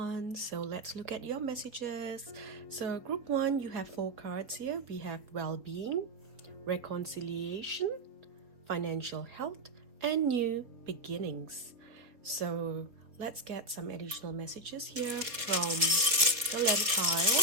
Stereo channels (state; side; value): late; left; 4.2 ms